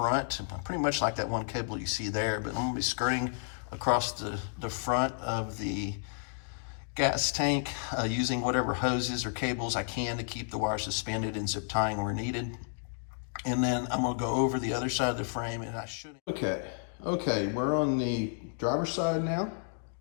pretty much like that one cable you see there, but I'm going to be skirting across the front of the gas tank using whatever hoses or cables I can to keep the wire suspended and zip tying where needed. And then I'm going to go over the other side of the frame, and I should. Okay, we're on the driver's side now.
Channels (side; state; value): right; silent; digital silence